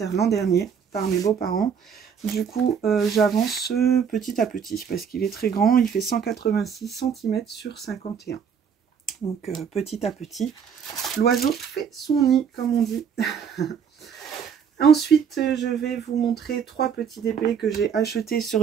l'an dernier par mes beaux-parents. Du coup, j'avance petit à petit parce qu'il est très grand. Il fait 186 cm sur 51. Donc, petit à petit, l'oiseau fait son nid, comme on dit. Ensuite, je vais vous montrer 3 petits DP que j'ai achetés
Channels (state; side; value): quieter; left; 7.2 dB